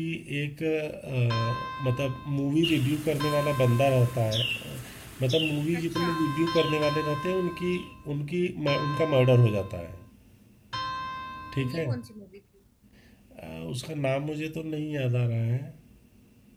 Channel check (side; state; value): both; identical; correlation 1.00